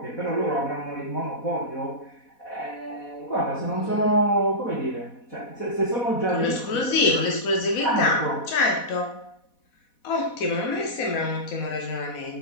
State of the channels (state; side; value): late; right; 4.1 ms